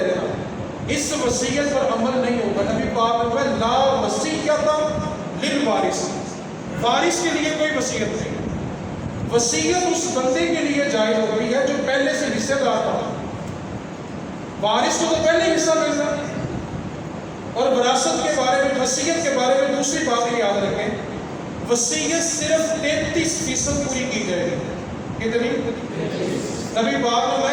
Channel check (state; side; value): identical; both; correlation 1.00